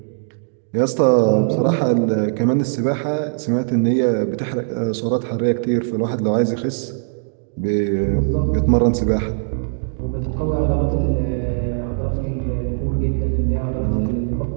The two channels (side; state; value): left; silent; digital silence